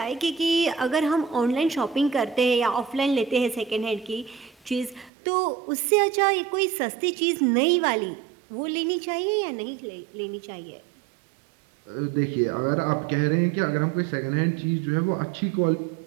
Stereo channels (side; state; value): left; drops out; at 5.1 s